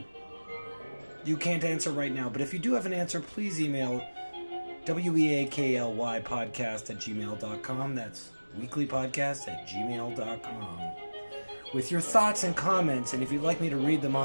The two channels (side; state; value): both; inverted; correlation -1.00